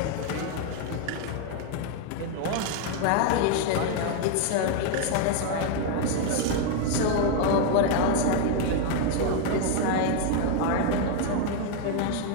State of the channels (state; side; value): different; both; correlation 0.01